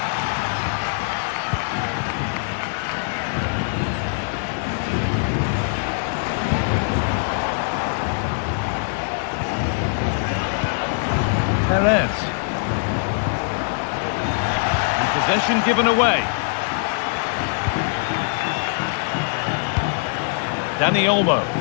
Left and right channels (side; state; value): right; silent; digital silence